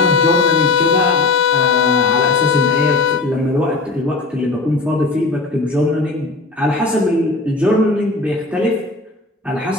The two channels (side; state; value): right; quieter; 3.6 dB